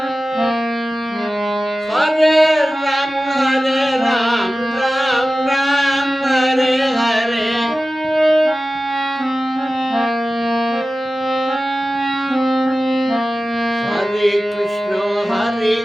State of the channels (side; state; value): both; normal; correlation 0.96